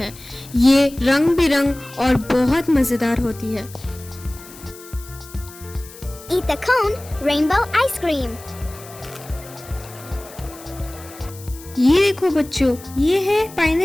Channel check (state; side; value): noise; left; hiss, 19 dB below the sound